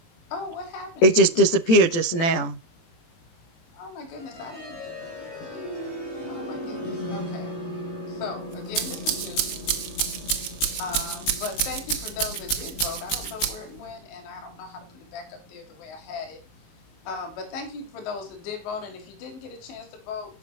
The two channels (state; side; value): late; right; 18 ms